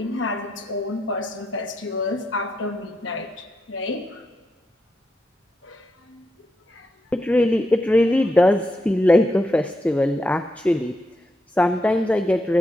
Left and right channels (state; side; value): normal; both; correlation 0.83